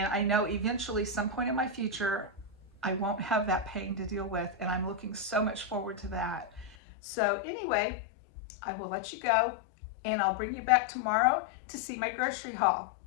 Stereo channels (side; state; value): right; drops out; at 6.8 s